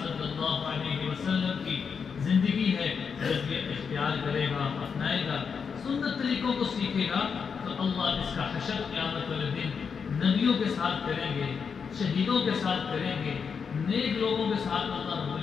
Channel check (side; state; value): right; quieter; 6.2 dB